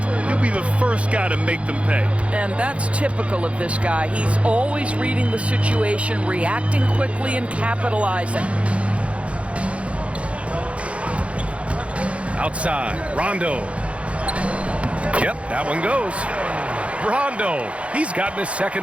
he'll be the first guy to make them pay. And that's typical of this guy. He's always reading the situation, reacting quickly, and capitalizing. Outside, Rondo. Yep, that one goes. Rondo, he's gotten his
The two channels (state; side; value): late; left; 0.062 ms